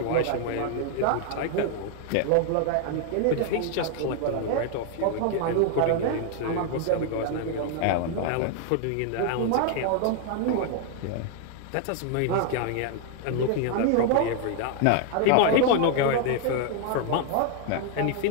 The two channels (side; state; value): both; different; correlation 0.00